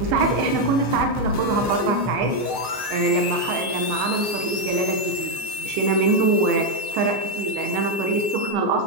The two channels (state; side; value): late; left; 15 ms